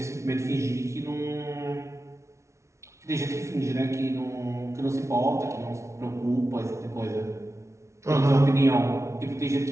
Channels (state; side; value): late; left; 0.14 ms